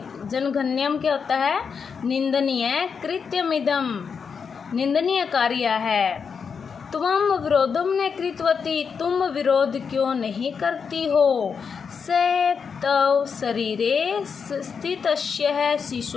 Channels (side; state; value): right; quieter; 6.1 dB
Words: क्या होता है? निंदनीय। कृत्यम इदम, निंदनीय कार्य है। त्वम विरोधम न कृतवती, तुम विरोध क्यों नहीं करती हो। स तव शरीरे स्थितस्य